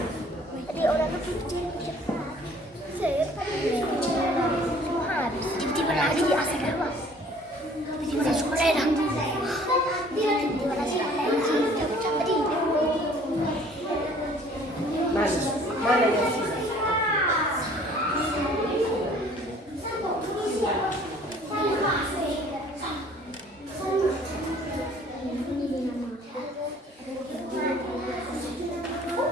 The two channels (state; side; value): normal; both; correlation 0.54